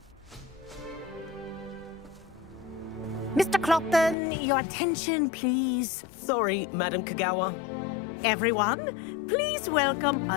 Mr. Clopton, your attention, please. Sorry, Madam Kagawa. Everyone, please welcome a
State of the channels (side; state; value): right; drops out; at 4.2 s